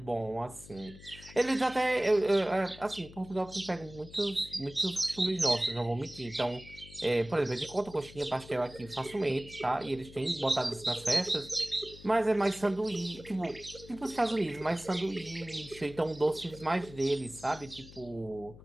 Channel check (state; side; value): noise; left; hum, 18 dB below the sound